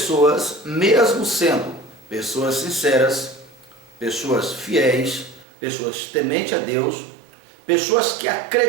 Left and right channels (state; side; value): drops out; left; at 5.5 s